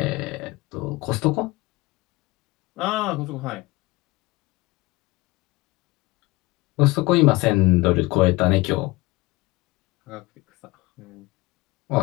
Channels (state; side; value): quieter; right; 21.5 dB